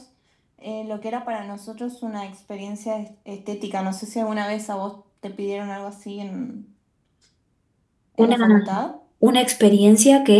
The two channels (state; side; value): identical; both; correlation 1.00